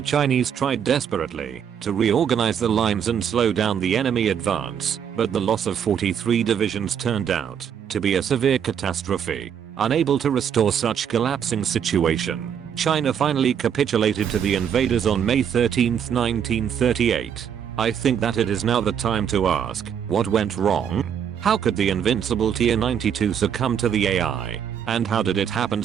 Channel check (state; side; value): quieter; left; 8.3 dB